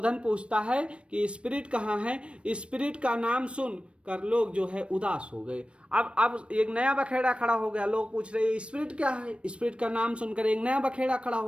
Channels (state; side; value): late; left; 0.059 ms